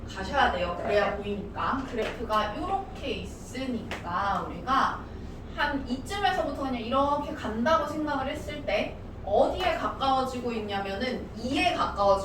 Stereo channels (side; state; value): both; identical; correlation 1.00